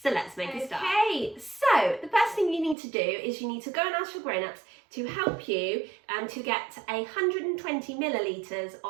So let's make a start. Okay, so the first thing you need to do is you need to go and ask your grown-ups to help you to get 120 millilitres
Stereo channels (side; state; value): left; drops out; at 2.8 s